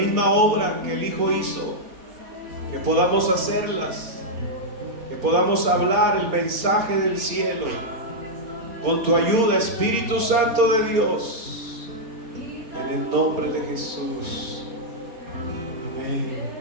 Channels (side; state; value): left; late; 4.3 ms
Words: obra que el Hijo hizo, que podamos hacerlas, que podamos hablar el mensaje del cielo con tu ayuda, Espíritu Santo de Dios, en el nombre de Jesús. Amén.